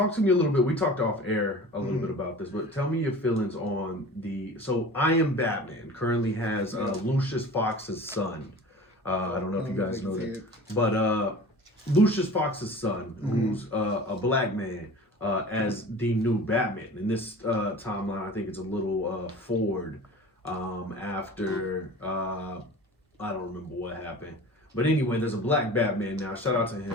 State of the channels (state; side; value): normal; both; correlation 0.39